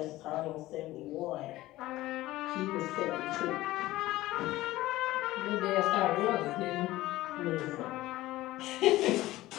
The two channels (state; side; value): quieter; right; 17.0 dB